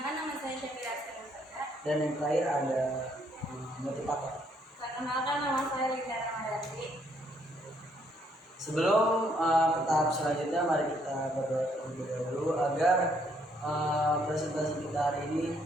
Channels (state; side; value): normal; both; correlation 0.69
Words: nama saya Syafira Askara. Dan yang terakhir ada motivator. Perkenalkan, nama saya Regita Ramadhani. Sebelum ke tahap selanjutnya, mari kita berdoa terlebih dahulu agar presentasi kita hari ini